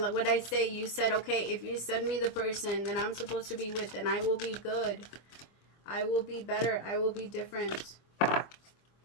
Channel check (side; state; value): right; late; 25 ms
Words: what I say, you said, okay, if you send me the person that I'm supposed to be with, then I will be good. I will be better. I will be different.